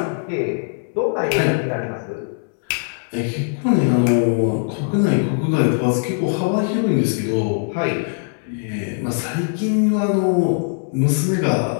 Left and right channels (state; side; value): silent; right; 65 dB below the other